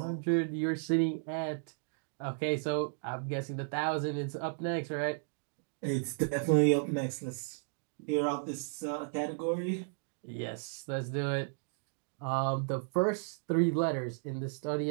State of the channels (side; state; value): left; silent; digital silence